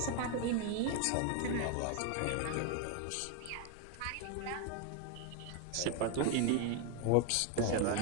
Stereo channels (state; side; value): different; both; correlation 0.01